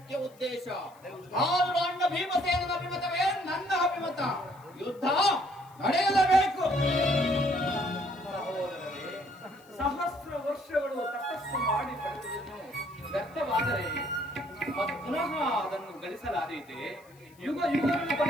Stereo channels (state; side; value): noise; left; hiss, 28 dB below the sound